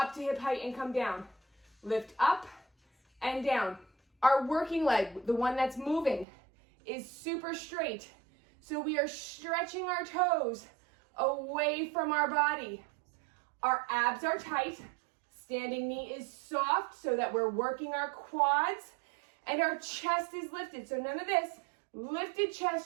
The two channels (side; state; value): left; drops out; at 6.2 s